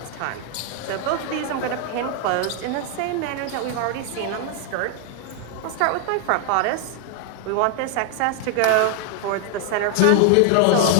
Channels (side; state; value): both; different; correlation 0.00